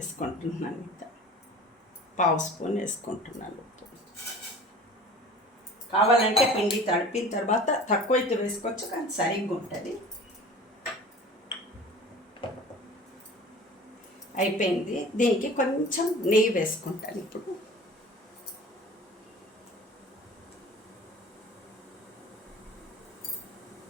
ఇంకా 1/2 స్పూన్ వేసుకుంటున్నాను ఉప్పు. కావాలంటే పిండి తడిపిన తర్వాత తక్కువైతే వేసుకోవచ్చు, కానీ సరిగ్గా ఉంటుంది. అయిపోయింది. దీనికి కొంచెం నెయ్యి వేసుకుంటాను ఇప్పుడు.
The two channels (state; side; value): normal; both; correlation 0.42